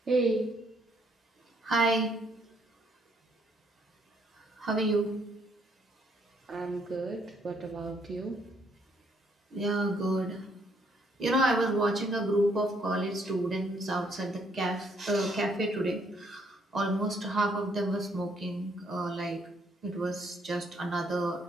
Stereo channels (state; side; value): normal; both; correlation 0.69